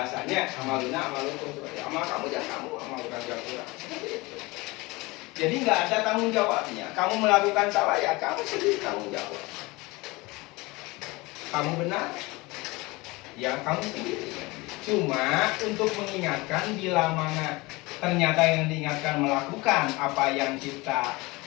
Amaluna amalukum seperti amal kamu jangan kamu, amal bukan kurang. Seperti itu. Jadi nggak ada tanggung jawabnya. Kamu melakukan salah ya kamu sendiri tanggung jawab. Kamu benar ya kamu sendiri. Cuma untuk mengingatkan bila mana ternyata yang diingatkan melakukan apa yang kita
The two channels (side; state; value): right; quieter; 23.1 dB